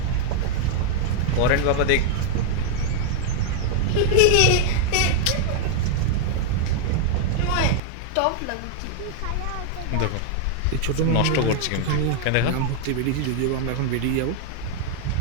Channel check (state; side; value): different; both; correlation 0.00